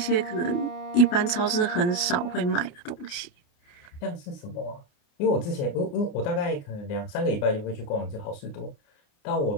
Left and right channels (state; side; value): late; right; 29 ms